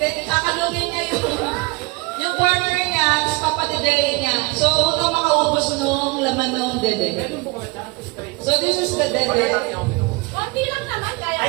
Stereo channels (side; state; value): left; quieter; 24.8 dB